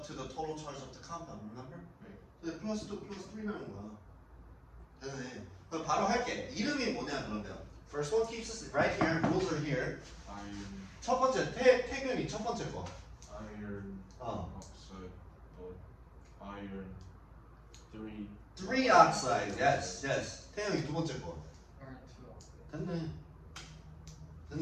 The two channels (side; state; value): both; identical; correlation 1.00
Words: to the total charge of the compound, remember? 근데 플러스 2, 플러스 3 나는 거야. 되네. 그럼 바로 할게. 이름이 뭐냐 그러면. First one keeps us right here, rules are here. Iron, 첫 번째, 태균이 첫 번째 거. iron oxide, iron 3 oxide, yes. 태균이 두 번째 거. 됐네.